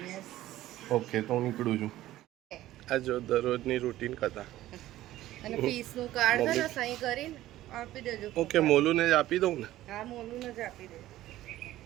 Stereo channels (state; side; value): quieter; left; 14.8 dB